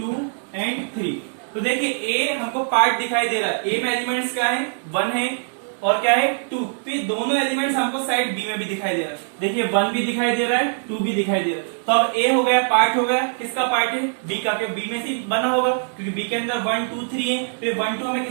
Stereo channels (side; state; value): left; silent; digital silence